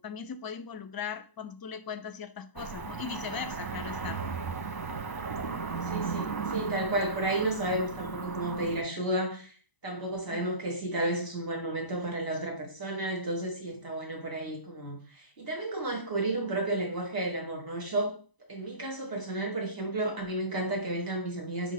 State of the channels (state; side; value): late; right; 1.0 ms